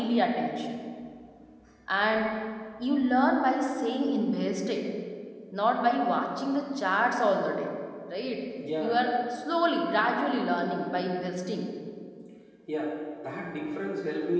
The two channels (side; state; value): both; identical; correlation 1.00